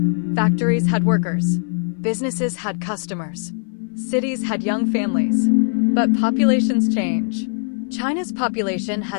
Factories had workers. Businesses had customers. Cities had young families. But populations change. China's population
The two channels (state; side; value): silent; right; 60 dB below the other